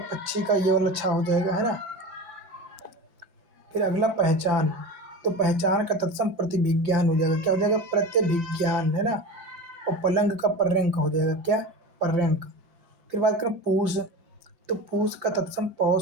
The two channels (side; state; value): left; late; 5.8 ms